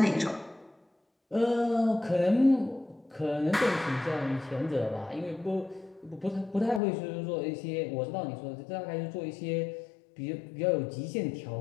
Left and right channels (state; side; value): drops out; right; at 6.8 s